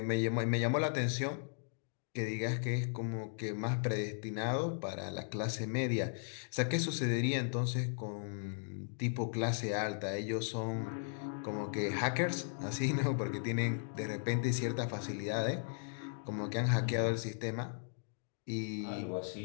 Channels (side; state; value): right; silent; digital silence